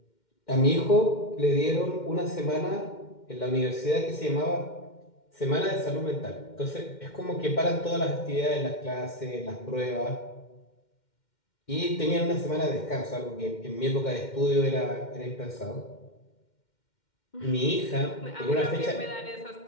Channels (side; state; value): right; late; 2.1 ms